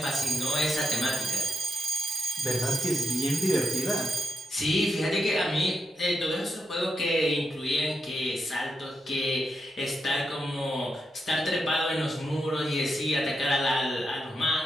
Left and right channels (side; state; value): both; normal; correlation 0.85